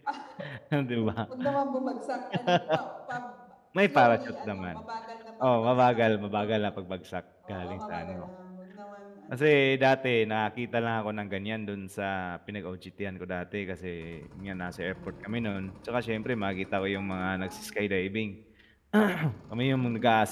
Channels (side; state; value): both; identical; correlation 1.00